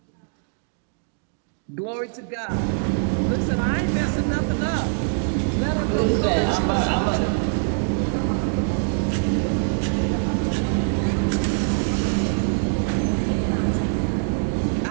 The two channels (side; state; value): left; silent; digital silence